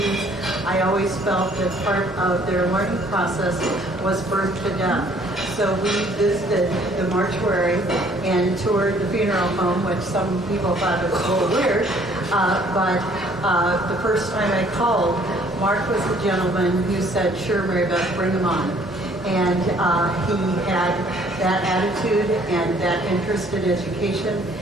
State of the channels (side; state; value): both; normal; correlation 0.60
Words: I always felt that part of their learning process was birth to death. So we visited the mortuary and toured the funeral home, which some people thought was a little weird. But the first time I called, Marc was the gentleman who said, "Sure, Mary Beth, bring him on." And he had that attitude and that interest in education.